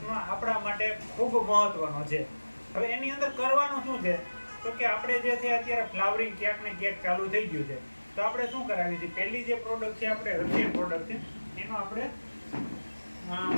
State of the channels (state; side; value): inverted; both; correlation -1.00